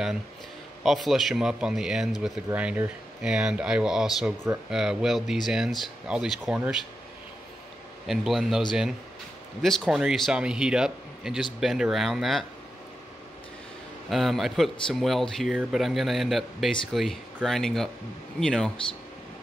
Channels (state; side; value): normal; both; correlation 0.89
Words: I'll flush them up on the ends with the grinder, and I will also weld these ends, all these corners, and blend those in. This corner you saw me heat up and just bend around that. I put some weld here, but I'm going to end up basically grinding up, you know,